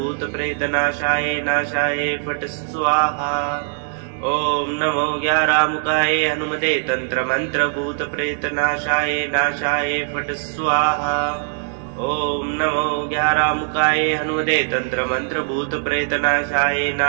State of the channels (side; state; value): left; silent; 65 dB below the other